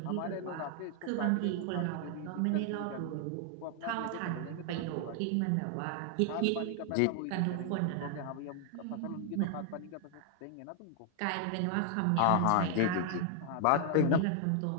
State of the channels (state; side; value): different; both; correlation 0.00